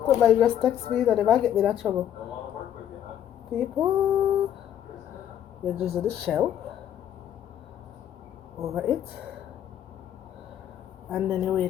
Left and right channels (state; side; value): quieter; right; 10.4 dB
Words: Somebody just text me that if I get me that trouble. People, you just do the shell over it, and then you